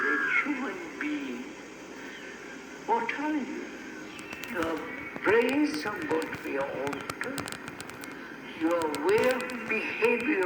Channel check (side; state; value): both; identical; correlation 1.00